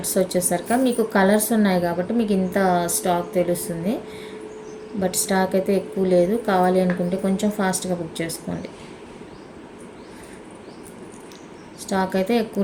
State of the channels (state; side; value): identical; both; correlation 1.00